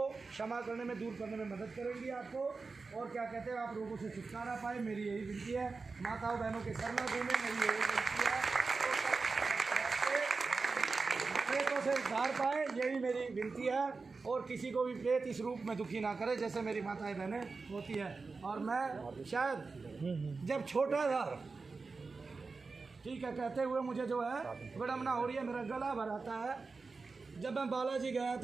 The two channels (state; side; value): quieter; left; 4.2 dB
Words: क्षमा करने में, दूर करने में मदद करेंगी आपको। और क्या कहते हैं, आप रोगों से छुटकारा पाए, मेरी यही विनती है। माताओं बहनों के शरण घूमें, मेरी यही विनती है। प्रेतों से उद्धार पाए, यही मेरी विनती है। और किसी को भी प्रेत इस रूप में दुखी ना करे जैसे मेरी माताएं बहनें होती है। और मैं शायद जब छोटा था, ठीक है, कहते हुए मुझे जो है विडम्बना हो रही है, मेरा गला भर आता है। जब मैं बालाजी गया